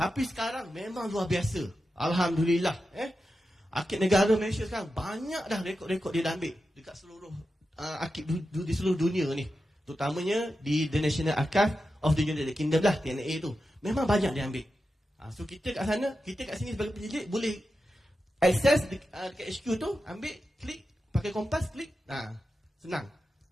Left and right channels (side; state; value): both; normal; correlation 0.91